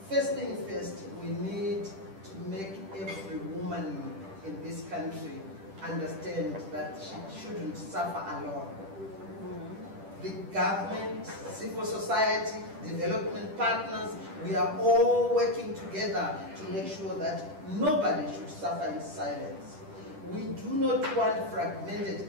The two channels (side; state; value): left; late; 10 ms